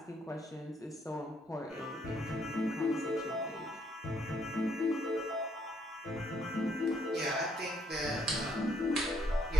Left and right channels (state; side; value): normal; both; correlation 0.70